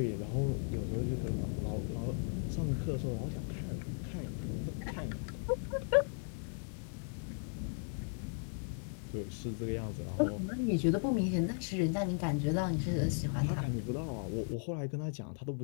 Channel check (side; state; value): right; silent; 53 dB below the other